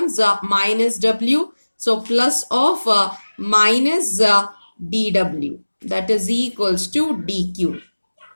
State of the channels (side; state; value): both; inverted; correlation -1.00